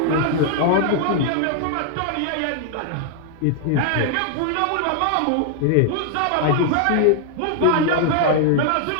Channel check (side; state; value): both; different; correlation 0.00